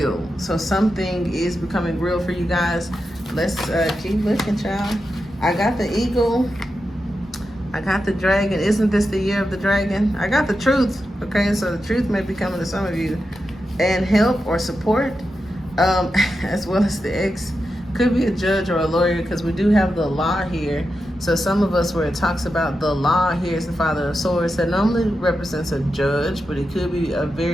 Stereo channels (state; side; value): normal; both; correlation 0.89